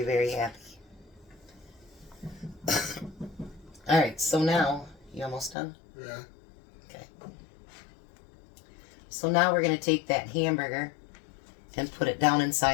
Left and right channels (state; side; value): drops out; right; at 5.6 s